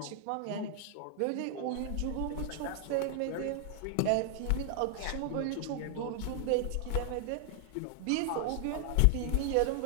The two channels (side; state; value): both; different; correlation 0.00